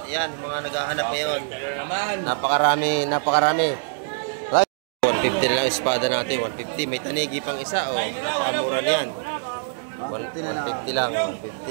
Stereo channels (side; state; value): left; silent; 63 dB below the other